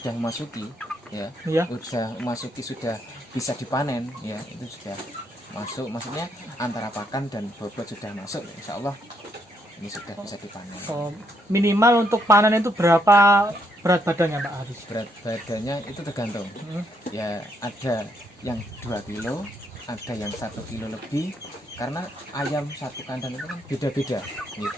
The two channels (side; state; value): both; normal; correlation 0.74